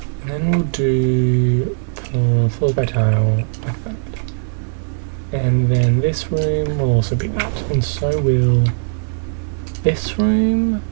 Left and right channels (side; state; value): left; silent; digital silence